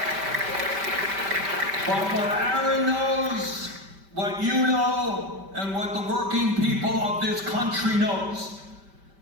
But what Aaron knows, what you know, and what the working people of this country knows,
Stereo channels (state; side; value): late; left; 5.1 ms